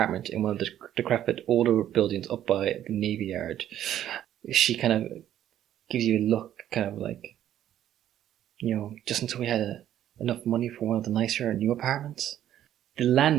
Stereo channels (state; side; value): quieter; left; 11.5 dB